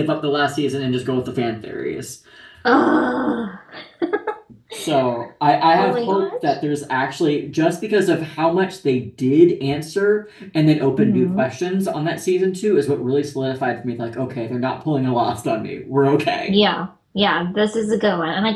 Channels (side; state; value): both; identical; correlation 1.00